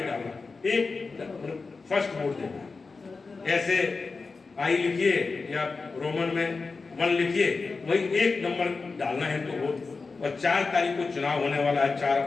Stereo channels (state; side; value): quieter; right; 4.2 dB